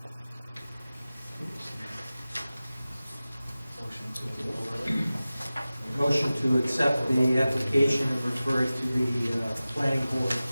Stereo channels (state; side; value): inverted; both; correlation -0.97